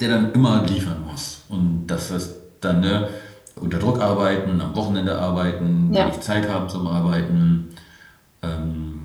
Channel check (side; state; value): both; identical; correlation 1.00